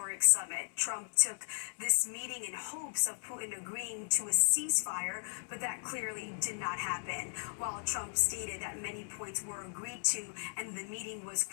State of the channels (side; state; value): right; silent; digital silence